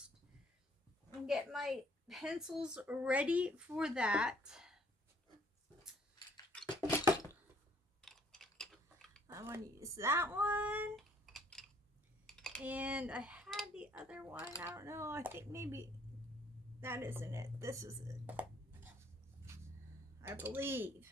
And get my pencils ready for that. I want to use that one. And I had the other one. I don't know. I think maybe that isn't it. This is it. I believe.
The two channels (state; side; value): normal; both; correlation 0.62